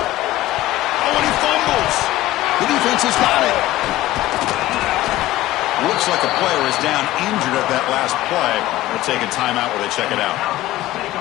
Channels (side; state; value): right; quieter; 15.9 dB